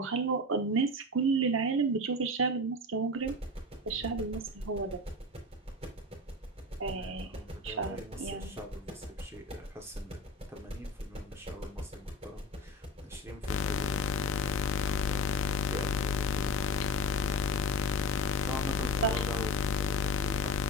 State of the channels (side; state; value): both; normal; correlation 0.28